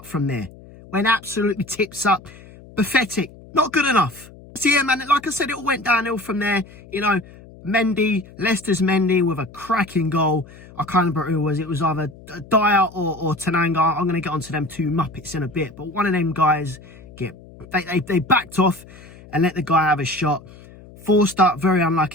from there. Went absolutely tips up. Pathetic. Not good enough. So yeah, man, like I said, it all went downhill from there. You know, Mendy, Leicester's Mendy with a cracking goal. I can't remember who it was. It was either Dyer or Tananga. I'm going to get onto them two Muppets in a bit. But one of them guys, they backed off and let the guy have a shot. Forster, very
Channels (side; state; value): left; noise; hum, 21 dB below the sound